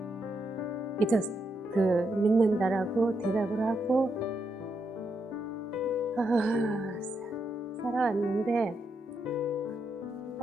그 믿는다라고 대답을 하고 살아왔는데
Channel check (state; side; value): normal; both; correlation 0.81